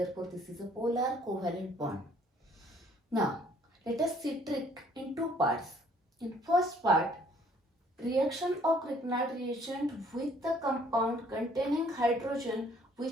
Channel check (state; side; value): normal; both; correlation 0.60